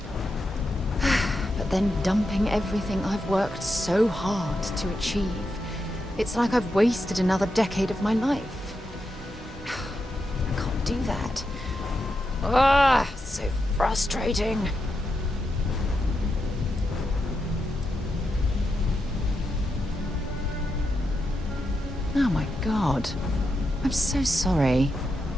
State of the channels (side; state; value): both; normal; correlation 0.86